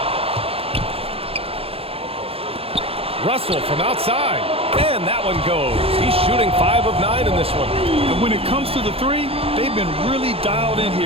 Russell from outside, and that one goes. He's shooting 5 of 9 in this one. And when it comes to the three, they've been really dialed in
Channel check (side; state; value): left; late; 0.28 ms